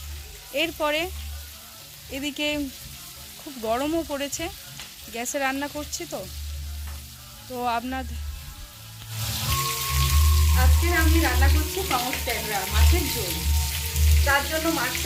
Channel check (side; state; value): both; identical; correlation 1.00